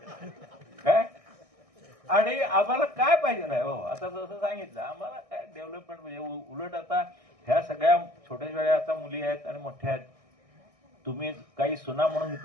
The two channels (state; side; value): late; left; 1.6 ms